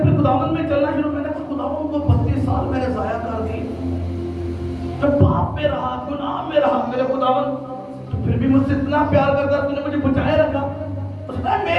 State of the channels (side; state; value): both; identical; correlation 1.00